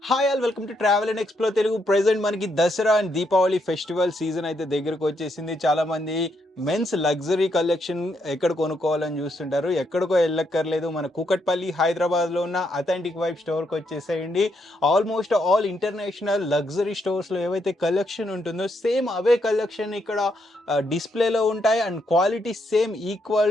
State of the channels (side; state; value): both; normal; correlation 0.77